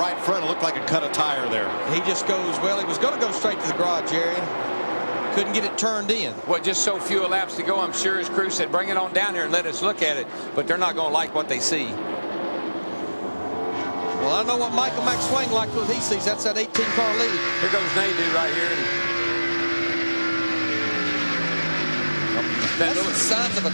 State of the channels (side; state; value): both; inverted; correlation -1.00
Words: front. It looked like a cut of tire there. He just goes, well, he was going to go straight to the garage area. Couldn't get it turned in. Well, just so few laps to go, I'm sure his crew said, bring it on down here and let us look at it. But they're not going to like what they see. Well, I know what Michael McSwain liked what he sees. That's that 18-car lead. Here goes Nadeau right here. That's the signs of a